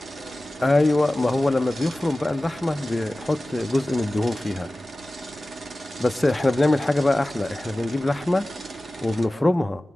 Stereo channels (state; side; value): normal; both; correlation 0.97